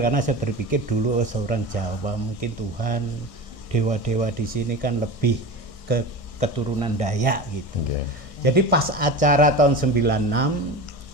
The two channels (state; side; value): late; right; 1.6 ms